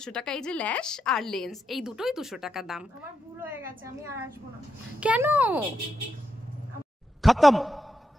টাকা এই যে ল্যাশ আর লেন্স, এই দুটোই 200 টাকা দাম। আমার ভুল হয়ে গেছে, আমি আর আসবো না। কেন? खत्म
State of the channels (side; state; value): both; normal; correlation 0.84